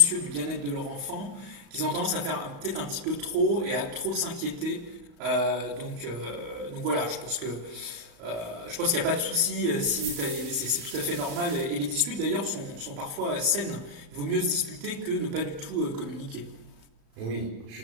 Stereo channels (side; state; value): left; late; 35 ms